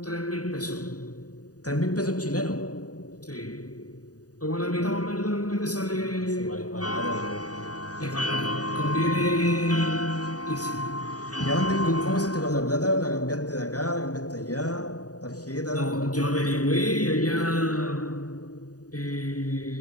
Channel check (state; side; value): late; right; 0.68 ms